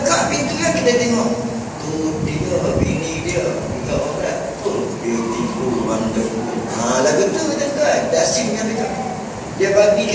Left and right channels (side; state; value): both; identical; correlation 1.00